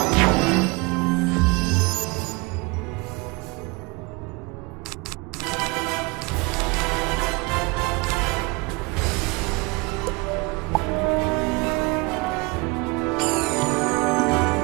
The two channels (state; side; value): quieter; left; 26.7 dB